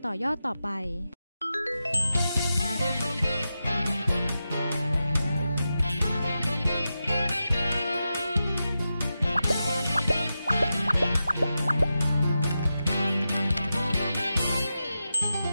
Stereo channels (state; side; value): inverted; both; correlation -0.90